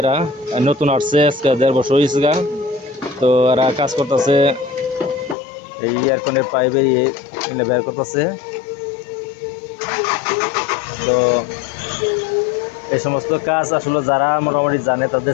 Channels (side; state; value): right; drops out; at 5.4 s